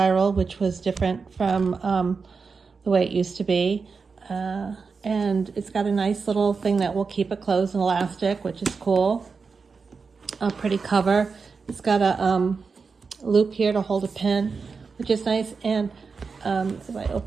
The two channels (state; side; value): quieter; left; 5.0 dB